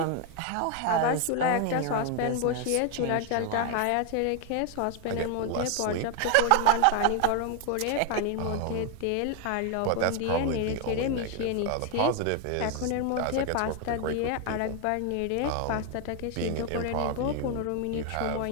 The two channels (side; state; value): both; different; correlation 0.01